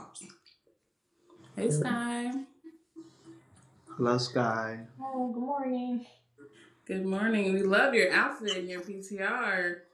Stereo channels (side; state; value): both; identical; correlation 1.00